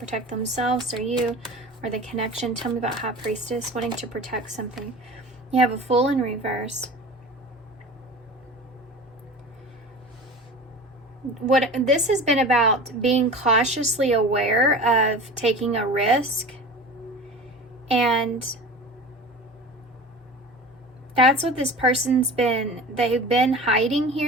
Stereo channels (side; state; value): both; normal; correlation 0.36